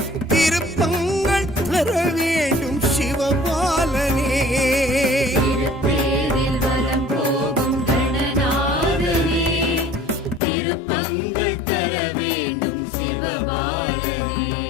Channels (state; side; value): drops out; right; at 10.4 s